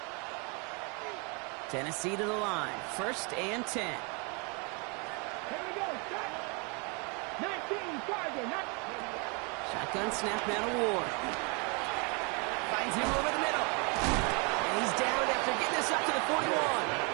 Tennessee to the line. First and 10. Here we go, shot. 19 target. Shotgun snap now to Ward. Finds him over the middle. And he's down after getting this up to the 41.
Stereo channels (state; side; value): quieter; left; 33.1 dB